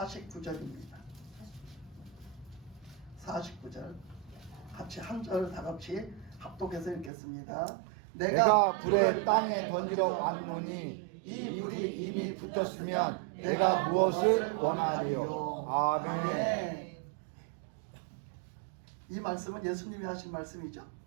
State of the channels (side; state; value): left; drops out; at 7.1 s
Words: 49절 같이 한 절 다 같이 합독해서 읽겠습니다. 내가 불을 땅에 던지러 왔노니 이 불이 이미 붙었으면 내가 무엇을 원하리요. 아멘. 이 말씀은 예수님이 하신 말씀이죠.